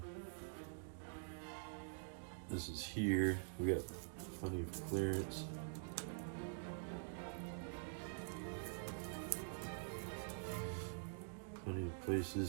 This is here. We got plenty of clearance. Plenty of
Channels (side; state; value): left; silent; digital silence